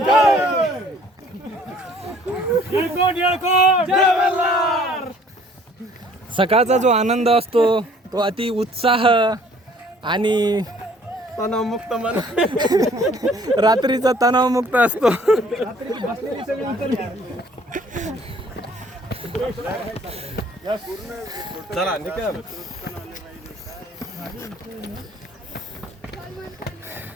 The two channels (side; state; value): both; normal; correlation 0.57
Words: सकाळचा जो आनंद असतो तो अति उत्साह आणि तणावमुक्त मन रात्रीचा तणावमुक्त असतो. चला निकम.